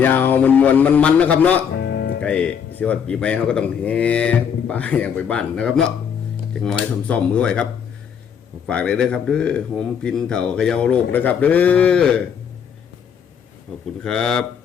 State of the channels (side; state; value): right; quieter; 7.6 dB